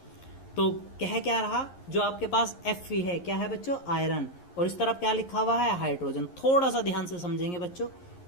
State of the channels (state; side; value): late; right; 11 ms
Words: तो कह क्या रहा? जो आपके पास Fe है क्या है बच्चों? आयरन। और इस तरफ क्या लिखा हुआ है? हाइड्रोजन। थोड़ा सा ध्यान से समझेंगे बच्चों।